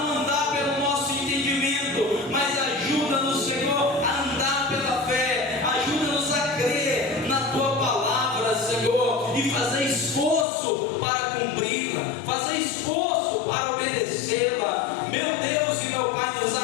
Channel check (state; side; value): drops out; right; at 10.5 s